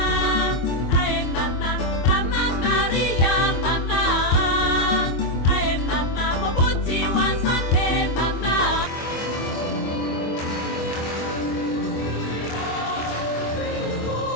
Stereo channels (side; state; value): right; late; 24 ms